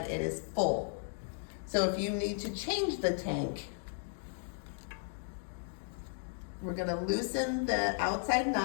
it is full. So if you need to change the tank, we're going to loosen the outside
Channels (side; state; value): right; silent; digital silence